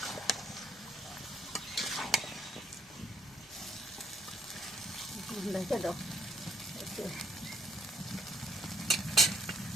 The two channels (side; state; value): both; normal; correlation 0.70